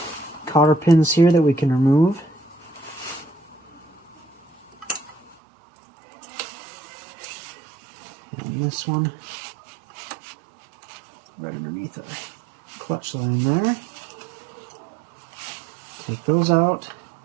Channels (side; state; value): left; drops out; at 5.4 s